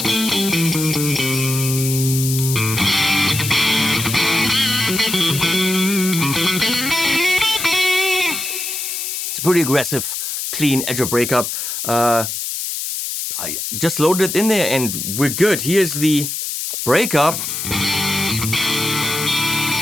Pretty aggressive, clean edge of breakup. I just loaded it in there and we're good. Here's the breakup.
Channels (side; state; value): left; noise; hiss, 4 dB below the sound